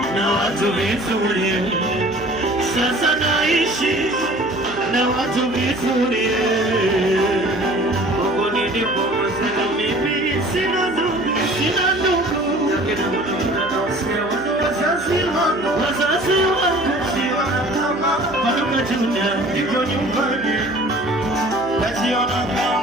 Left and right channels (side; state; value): right; noise; hum, 16 dB below the sound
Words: na watu vizuri, sasa naishi na watu vizuri. Mungu nilipokosa mimi sina ndugu, sina ndugu, wazazi wangu Paduka Junior, niko nyumbani, najiona